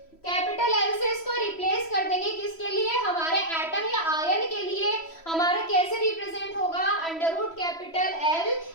कैपिटल एल से इसको रिप्लेस कर देंगे, किसके लिए, हमारे एटम या आयन के लिए। हमारा कैसे रिप्रेजेंट होगा, under root capital L,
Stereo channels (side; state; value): right; late; 3.1 ms